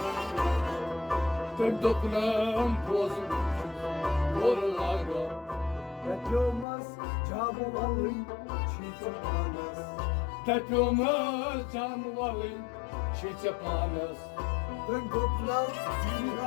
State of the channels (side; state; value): right; drops out; at 6.7 s